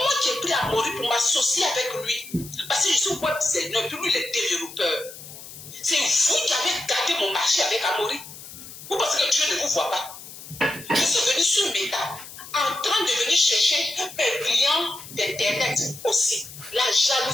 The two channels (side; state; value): left; noise; hiss, 15 dB below the sound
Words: qui ai pris Amaury pour m'associer avec lui. Parce que je suis web designer, puis lui, il est développeur. C'est vous qui avez gardé mon marché avec Amaury. Vous pensez que Dieu ne vous voit pas. Je suis venu sur Meta, en train de venir chercher un client d'Internet aussi. La